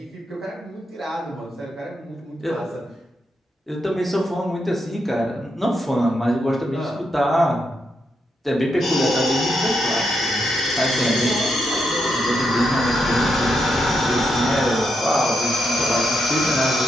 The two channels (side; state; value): both; normal; correlation 0.82